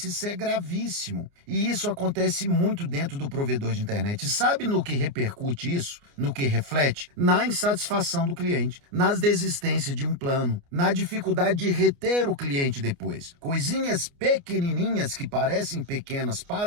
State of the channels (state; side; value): late; left; 29 ms